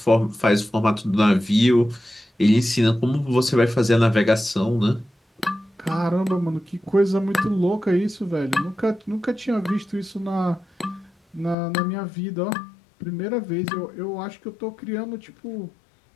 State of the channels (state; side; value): drops out; right; at 11.6 s